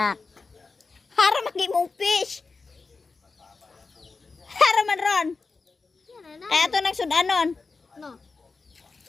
Hara magimong fish. Hara man ron. Kaya to nang sudanon. No.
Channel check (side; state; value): right; quieter; 4.2 dB